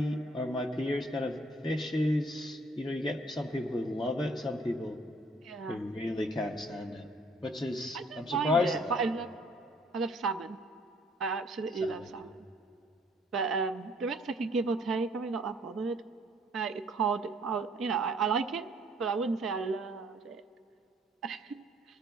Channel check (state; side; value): normal; both; correlation 0.61